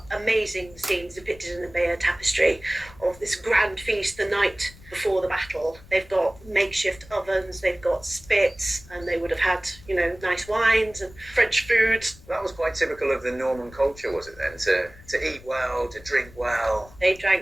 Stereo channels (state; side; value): noise; left; rumble, 21 dB below the sound